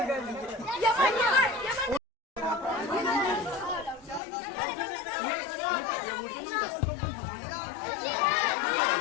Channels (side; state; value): right; drops out; at 4.2 s